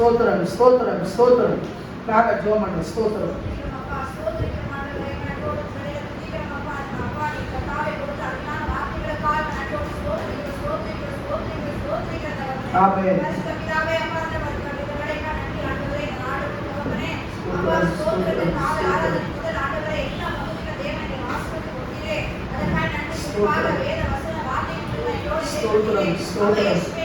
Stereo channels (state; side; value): identical; both; correlation 1.00